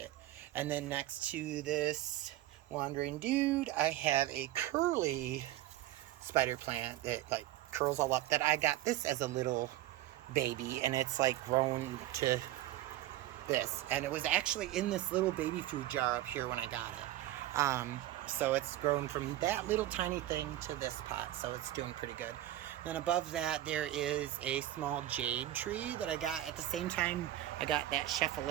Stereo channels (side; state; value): left; quieter; 14.5 dB